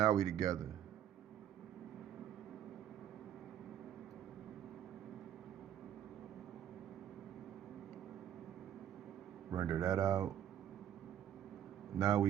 we together. Render that out. Now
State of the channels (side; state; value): left; quieter; 10.4 dB